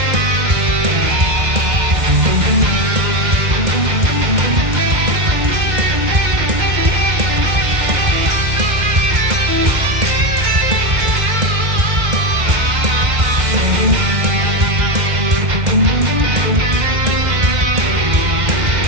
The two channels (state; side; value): late; left; 2.1 ms